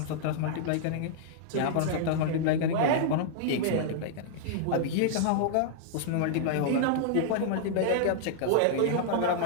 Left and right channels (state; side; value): different; both; correlation -0.01